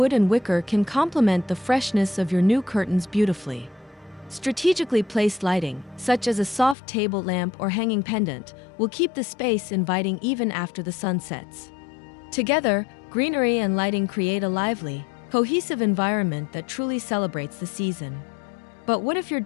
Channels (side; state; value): right; drops out; at 6.8 s